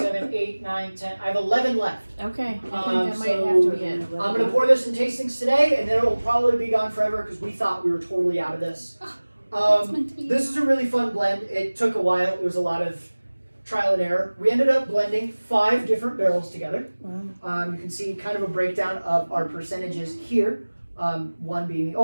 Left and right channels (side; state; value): both; inverted; correlation -1.00